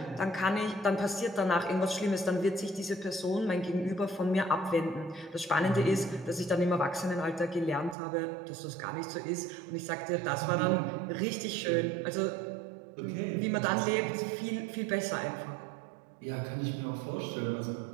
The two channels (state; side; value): drops out; left; at 8.0 s